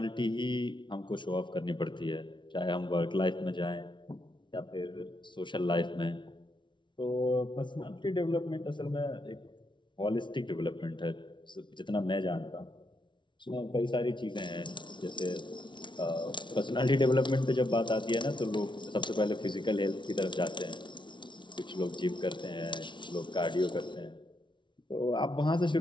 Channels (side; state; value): right; late; 0.24 ms